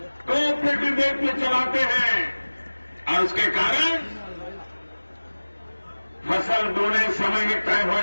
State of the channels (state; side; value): inverted; both; correlation -1.00